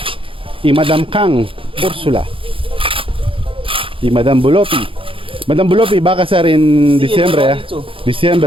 y Madam Kang Ursula y Madam Bulopi. Madam Bulopi va a casar en Sí, diciembre, me lo ha dicho.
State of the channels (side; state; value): left; late; 0.26 ms